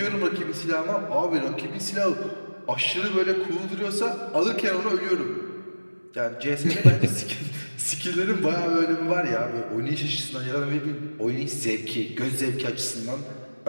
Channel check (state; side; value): inverted; both; correlation -1.00